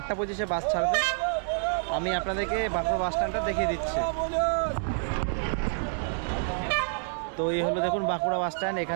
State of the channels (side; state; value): left; silent; digital silence